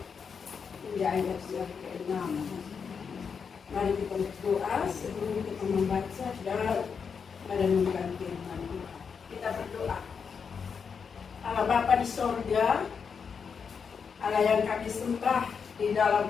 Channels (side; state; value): right; quieter; 6.2 dB